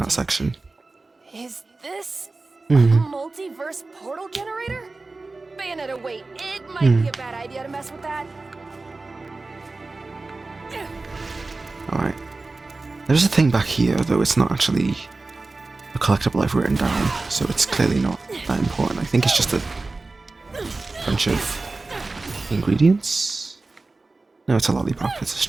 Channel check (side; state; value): left; quieter; 3.5 dB